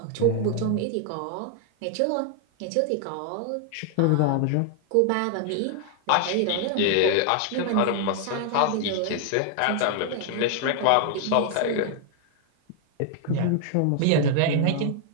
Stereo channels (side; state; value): both; different; correlation 0.00